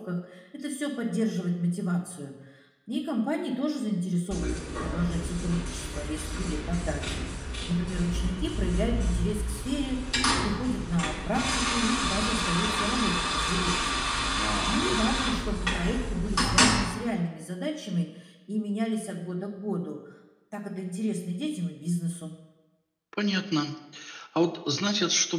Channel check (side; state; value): both; identical; correlation 1.00